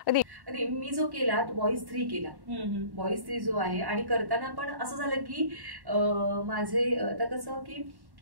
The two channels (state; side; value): late; left; 1.1 ms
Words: मी जो केला तो वॉइस 3 केला. वॉइस 3 जो आहे, आणि करताना पण असं झालं की माझे आता कसं की